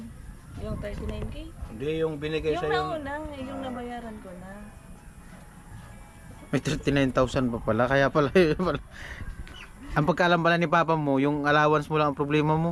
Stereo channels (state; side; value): identical; both; correlation 1.00